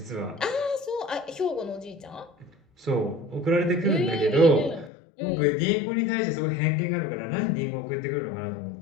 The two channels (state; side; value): drops out; right; at 4.9 s